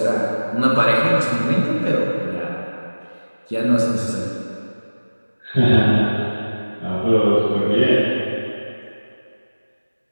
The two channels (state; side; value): inverted; both; correlation -1.00